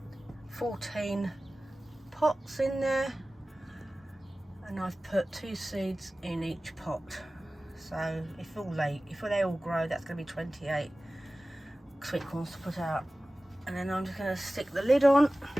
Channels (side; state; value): both; normal; correlation 0.97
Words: 14 pots in there, and I've put 2 seeds in each pot. So if they all grow, that's going to be 28 sweet corns to put out. And then I'm just going to stick the lid on,